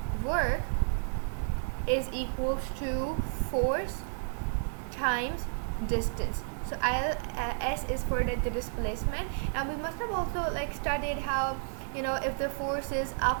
work is equals to force times distance. So S is for the displacement, and we must have also studied how if the force is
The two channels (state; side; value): silent; left; digital silence